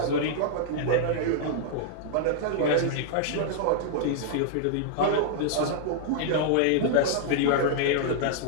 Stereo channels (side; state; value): both; different; correlation -0.01